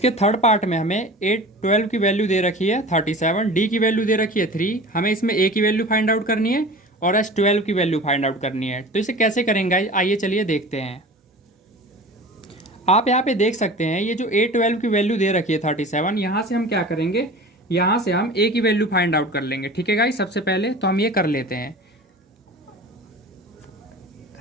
थर्ड पार्ट में हमें A12 की वैल्यू दे रखी है 37, D की वैल्यू दे रखी है 3, हमें इसमें A की वैल्यू फाइंड आउट करनी है और S12 की वैल्यू फाइंड आउट करनी है। तो इसे कैसे करेंगे गाइज, आइए चलिए देखते हैं। आप यहाँ पे देख सकते हैं ये जो A12 की वैल्यू दे रखी है 37, यहाँ से हम क्या करेंगे, यहाँ से हम A की वैल्यू फाइंड आउट कर लेंगे। ठीक है गाइस, सबसे पहले तो हम ये कर लेते हैं।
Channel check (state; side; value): normal; both; correlation 0.38